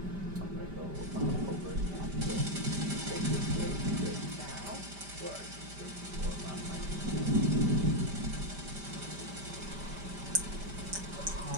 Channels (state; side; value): late; left; 5.1 ms